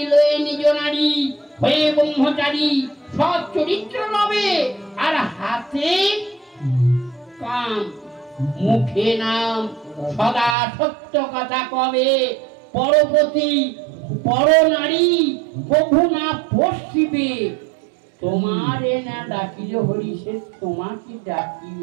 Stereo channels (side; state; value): left; drops out; at 10.6 s